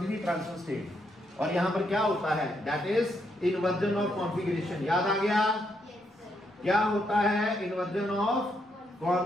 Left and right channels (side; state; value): both; normal; correlation 0.77